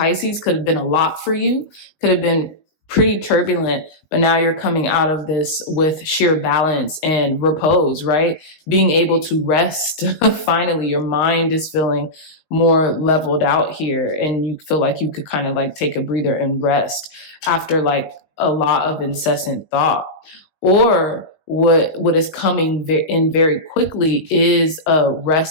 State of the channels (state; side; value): late; right; 19 ms